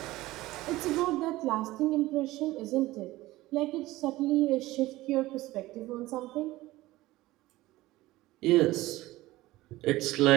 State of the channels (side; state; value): left; quieter; 17.9 dB